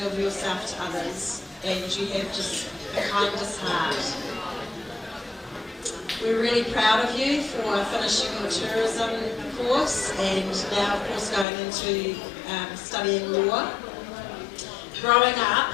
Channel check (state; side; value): drops out; right; at 11.5 s